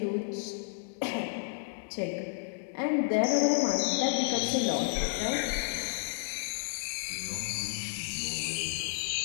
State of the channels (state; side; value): silent; right; digital silence